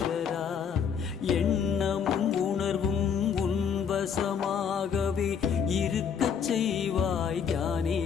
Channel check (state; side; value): quieter; right; 7.1 dB